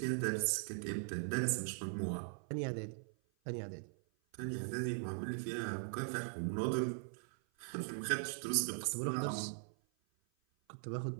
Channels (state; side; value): silent; left; 51 dB below the other